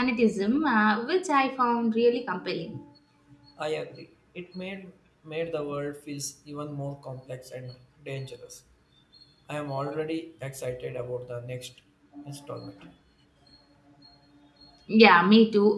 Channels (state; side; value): identical; both; correlation 1.00